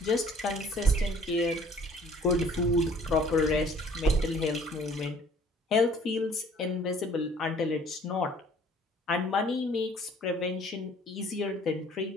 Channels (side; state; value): both; normal; correlation 0.55